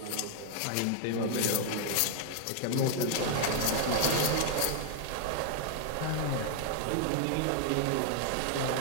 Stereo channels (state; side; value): different; both; correlation 0.00